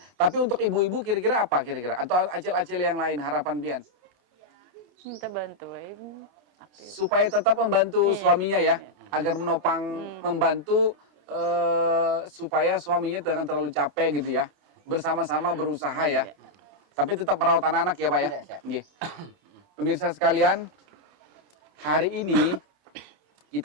tapi untuk ibu-ibu kira-kira apa kira-kira? Atau acil-acil yang lain harapan pian? Minta bantuin. Supaya tetap membantu Iya. suaminya ya, agar menopang membantu supaya suaminya jangan terlalu capek gitu ya. Bersama-sama berusaha ya. Iya. Tapi tetap merawat anak-anak ya Pak ya. Iya, siap. Nggih. Pemirsa sekalian, hari ini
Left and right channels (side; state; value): left; late; 30 ms